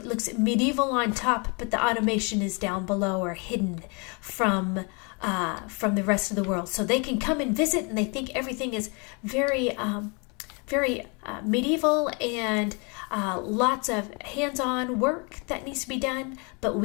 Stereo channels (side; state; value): right; quieter; 32.9 dB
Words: looks medieval on top, but the automation is down below or hidden from the rest of the world. So they can come and visit and they think everything is very medieval and lots of hands-on work that needs to be done. But